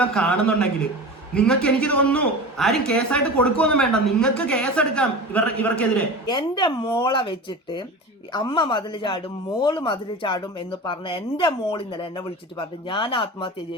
കാണുന്നുണ്ടെങ്കിൽ നിങ്ങൾക്ക്, എനിക്ക് തോന്നുന്നു, ആരും കേസായിട്ട് കൊടുക്കുമൊന്നും വേണ്ട, നിങ്ങൾക്ക് കേസെടുക്കാം ഇവർക്കെതിരെ. എന്റെ മോളെ വെച്ചിട്ട് അമ്മ മതിൽ ചാടും, മോള് മതിൽ ചാടും എന്ന് പറഞ്ഞ എന്റെ മോൾ ഇന്നലെ എന്നെ വിളിച്ചിട്ട് പറഞ്ഞു ഞാൻ ആത്മഹത്യ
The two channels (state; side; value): normal; both; correlation 0.31